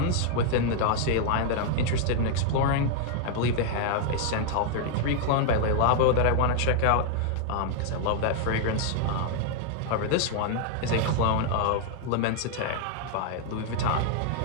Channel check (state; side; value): different; both; correlation 0.00